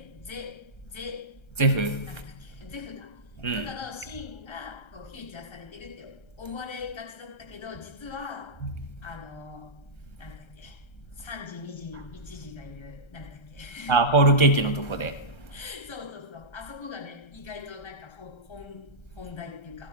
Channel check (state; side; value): late; right; 1.3 ms